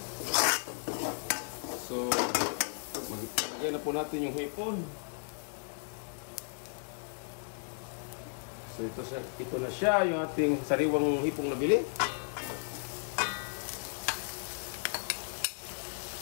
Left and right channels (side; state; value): right; silent; digital silence